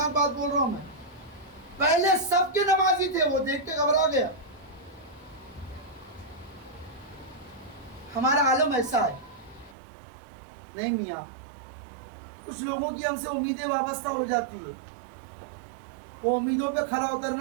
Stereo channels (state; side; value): drops out; left; at 9.8 s